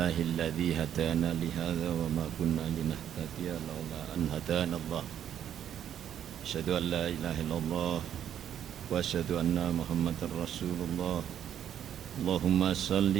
hadana li hadza wa ma kunna linahtadiya laula an hadana Allah. Asyhadu an la ilaha illallah wa asyhadu anna Muhammadar Rasulullah. Allahumma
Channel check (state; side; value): quieter; left; 9.9 dB